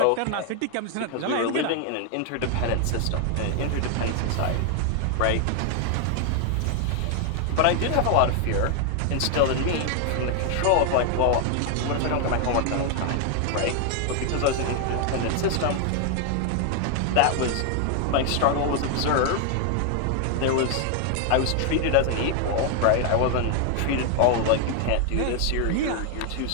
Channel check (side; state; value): both; different; correlation 0.00